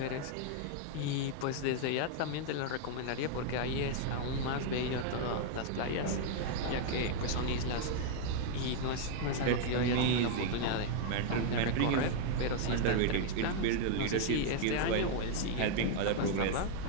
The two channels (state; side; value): different; both; correlation 0.00